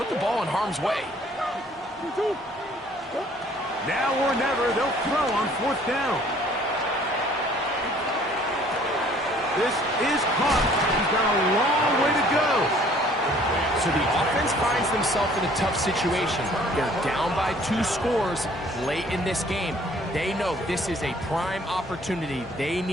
the ball in harm's way. Now or never, they'll throw on fourth down. This is caught. He's got a long way to go. So the offense finds themselves in a tough situation. They're down by 2 scores late in this game. They know this is a prime opportunity. They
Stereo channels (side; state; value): both; normal; correlation 0.57